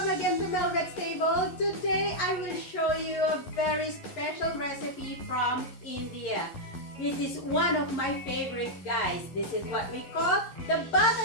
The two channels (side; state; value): right; late; 11 ms